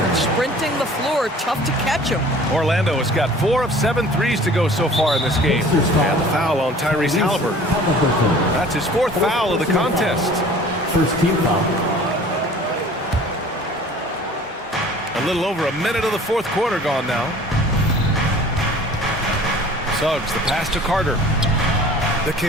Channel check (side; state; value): both; normal; correlation 0.47